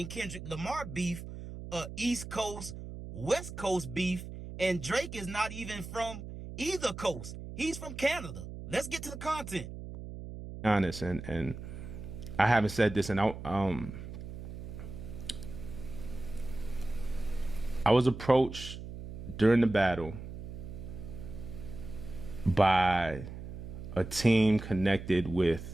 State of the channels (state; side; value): noise; right; hum, 10 dB below the sound